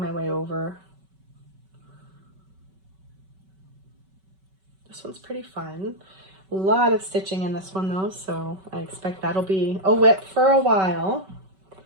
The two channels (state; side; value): late; left; 5.3 ms